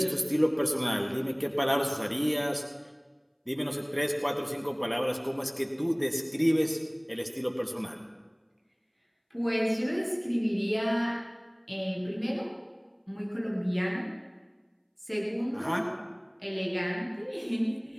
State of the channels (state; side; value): identical; both; correlation 1.00